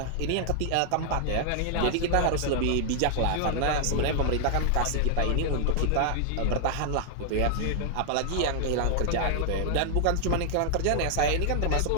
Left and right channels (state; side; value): different; both; correlation 0.00